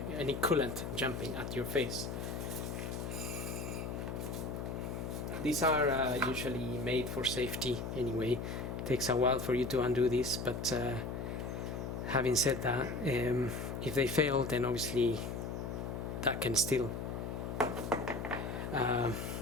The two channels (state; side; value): noise; left; hum, 4 dB below the sound